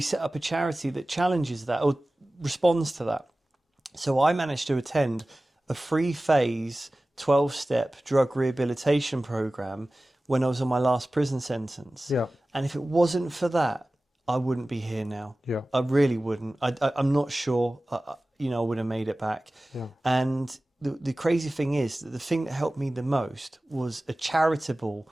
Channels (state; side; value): normal; both; correlation 0.97